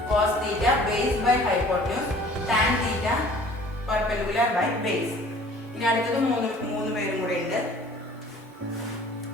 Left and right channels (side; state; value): both; normal; correlation 0.51